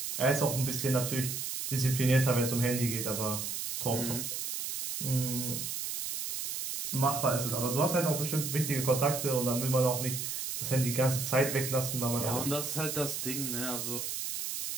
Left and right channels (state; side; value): noise; right; hiss, 4 dB below the sound